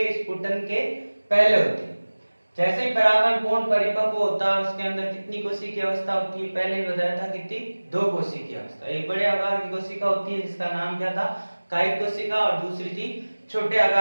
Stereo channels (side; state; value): both; inverted; correlation -1.00